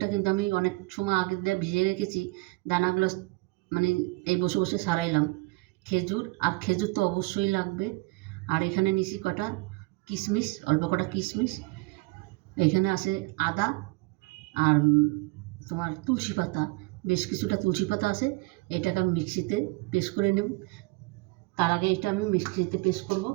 কিন্তু আমি অনেক সময় আগে দিয়ে ভিজিয়ে রেখেছি, দানাগুলো মানে এই বসে বসে সারাইলাম। খেজুর তো অবশ্যই লাগবে। আর এখানে নিছি কটা কিশমিশ, অল্প কটা কিশমিশ। এখানে আছে আদা, আর তোমার তুলসী পাতা, বেশ কিছুটা তুলসী পাতা আছে। এটাকে আমি মিক্সিতে পেস্ট করে নেব। তার আগে এটা আমি মিক্সিতে পেস্ট করব।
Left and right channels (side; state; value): left; quieter; 24.4 dB